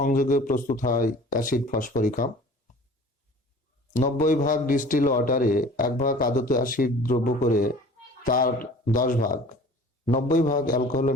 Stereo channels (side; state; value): both; normal; correlation 0.46